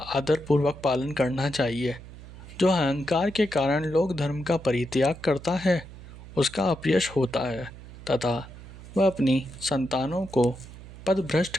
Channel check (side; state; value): right; noise; hum, 16 dB below the sound